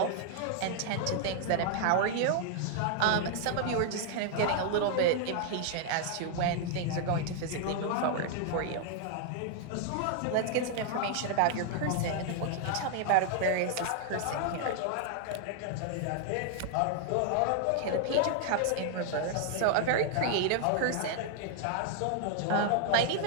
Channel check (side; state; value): both; different; correlation 0.00